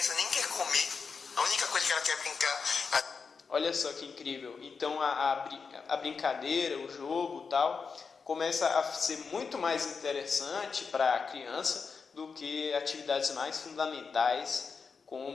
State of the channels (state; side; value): quieter; right; 5.3 dB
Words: nem quer comer, a única coisa que ela quer é brincar. Olha só que incrível. Então a brincadeira, o jogo, tal, começa a ser muito mais interessante para a criança do que atividades mais fundamentais